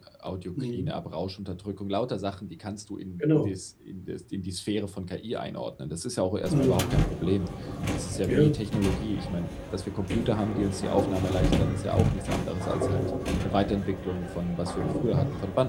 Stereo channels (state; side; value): identical; both; correlation 1.00